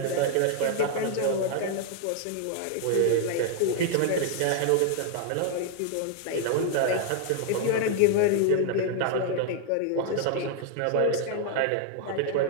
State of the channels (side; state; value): both; different; correlation 0.00